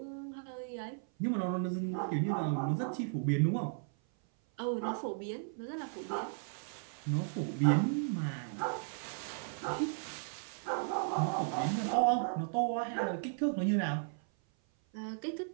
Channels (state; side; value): silent; left; 54 dB below the other